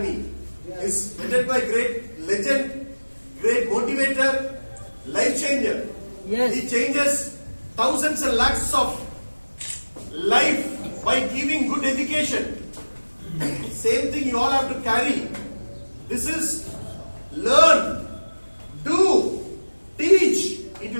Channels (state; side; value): inverted; both; correlation -1.00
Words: is headed by great legend, great motivator, life changer. Yes. He changes thousands and lakhs of life by giving good education. Same thing you all have to carry. This is learn, do, teach, it